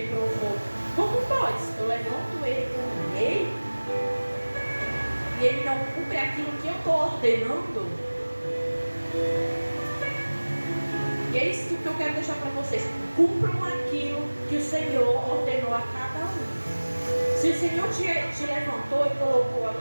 Como pode? Eu levanto ele como rei e ele não cumpre aquilo que eu estou ordenando? E é isso que eu quero deixar para vocês. Cumpram aquilo que o Senhor ordenou a cada um. Se o Senhor te levantou e colocou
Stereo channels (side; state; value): both; inverted; correlation -1.00